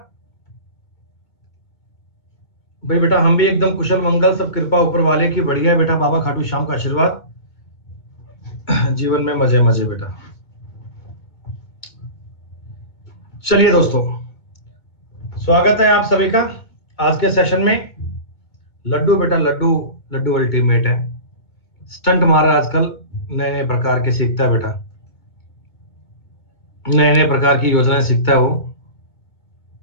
भाई बेटा हम भी एकदम कुशल मंगल, सब कृपा ऊपर वाले की बढ़िया है बेटा। बाबा खाटू श्याम का आशीर्वाद, जीवन में मजे मजे बेटा। चलिए दोस्तों, स्वागत है आप सभी का आज के सेशन में। लड्डू बेटा, लड्डू लड्डू अल्टीमेट है। स्टंट मारा आजकल, नए नए प्रकार के सीखता है बेटा, नए नए प्रकार की योजनाएं सीखता है वो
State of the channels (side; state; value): right; late; 2.2 ms